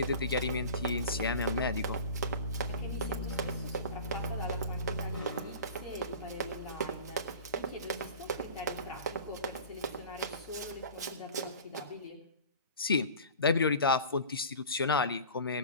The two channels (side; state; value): both; inverted; correlation -0.38